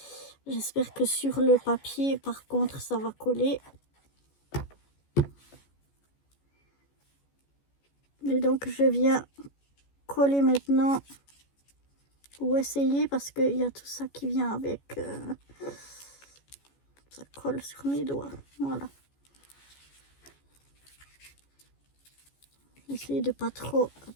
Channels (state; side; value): late; right; 14 ms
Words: J'espère que sur le papier, par contre, ça va coller. Et donc, je viens coller maintenant, ou essayer, parce qu'il y a tout ça qui vient avec. Ça colle sur mes doigts. Voilà. Essayer de pas trop